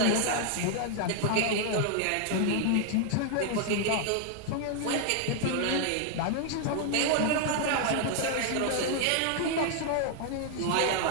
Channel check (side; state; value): both; different; correlation 0.00